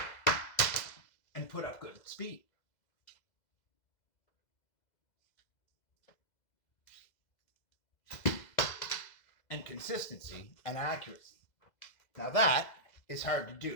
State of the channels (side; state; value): right; late; 2.0 ms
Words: and put up good speed. And consistency and accuracy. Now that is hard to